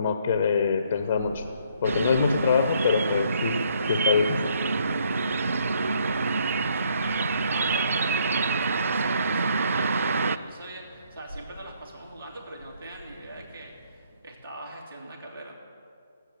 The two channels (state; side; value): inverted; both; correlation -0.66